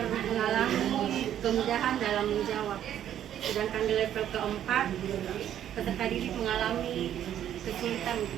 mengalami kemudahan dalam menjawab. Sedangkan di level keempat, peserta didik mengalami kesulitan untuk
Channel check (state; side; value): quieter; left; 10.7 dB